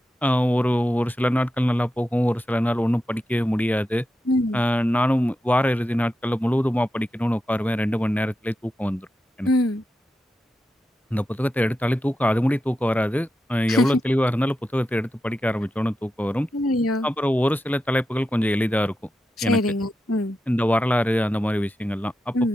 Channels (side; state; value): both; normal; correlation 0.89